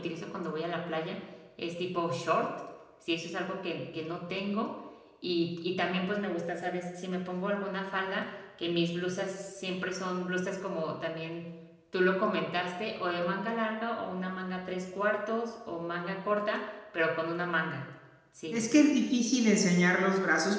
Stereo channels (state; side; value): identical; both; correlation 1.00